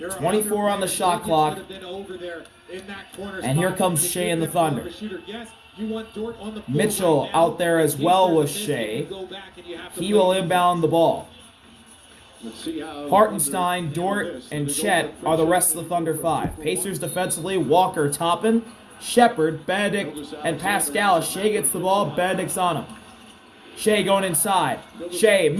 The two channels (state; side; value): identical; both; correlation 1.00